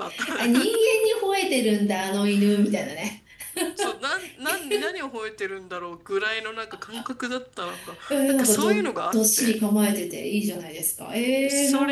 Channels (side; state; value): both; identical; correlation 1.00